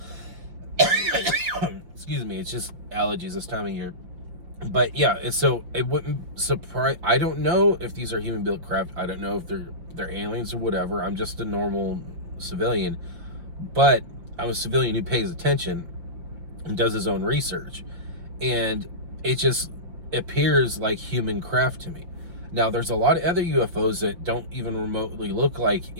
Excuse me, it's just allergies this time of year. But yeah, so it wouldn't surprise. I don't know if these are human-built craft. I don't know if they're aliens or whatever. I'm just a normal civilian, but I'm a civilian who pays attention and does his own research, and it just appears like human craft to me. Now, there's a lot of other UFOs that don't even remotely look like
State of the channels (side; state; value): left; late; 5.8 ms